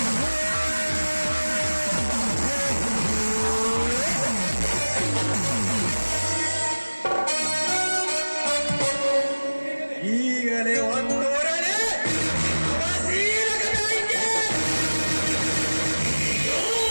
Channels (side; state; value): both; inverted; correlation -1.00